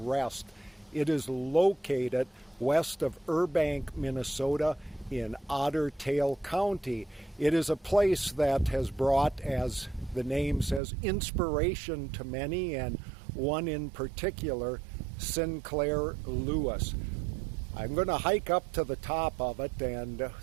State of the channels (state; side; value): drops out; left; at 10.8 s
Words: It is located west of Burbank, Minnesota in Otter Tail County. It is a place that has brought, as the name says, inspiration to many, and one in particular, Sinclair Lewis. I'm going to hike up to the top of it and